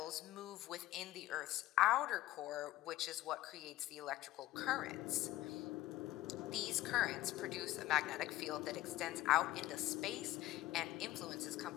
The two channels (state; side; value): quieter; right; 15.8 dB